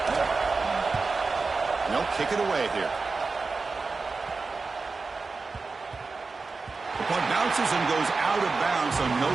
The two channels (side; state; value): left; quieter; 4.2 dB